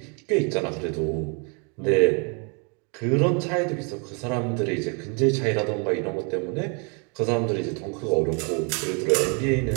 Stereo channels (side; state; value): left; quieter; 35.3 dB